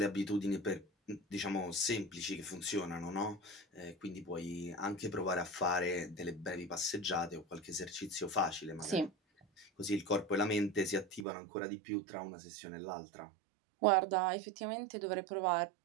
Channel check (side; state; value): left; drops out; at 11.2 s